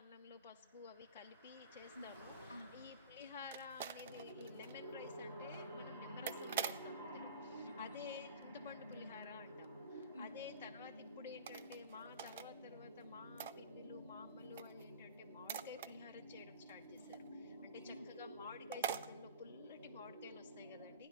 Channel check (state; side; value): inverted; both; correlation -0.40